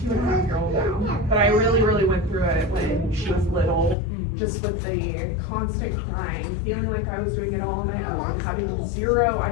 now, but I really went through it when she was little, just with the constant crying, feeling like I was doing it all on my own, having zero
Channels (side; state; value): right; drops out; at 4.0 s